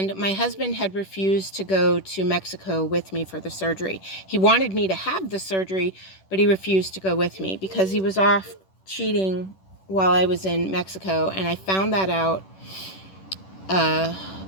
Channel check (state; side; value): late; right; 10 ms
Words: my husband had refused to go to Mexico with me for the surgery. He wanted me to have the surgery, but he refused to go with me because he was off cheating while I was in Mexico. And I found that out